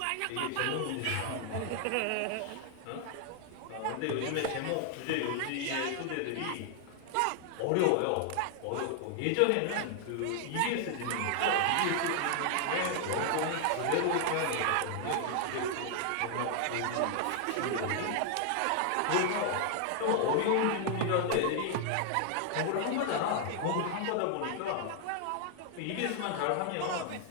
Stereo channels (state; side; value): different; both; correlation 0.00